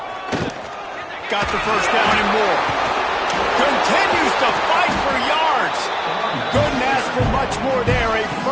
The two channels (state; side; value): identical; both; correlation 1.00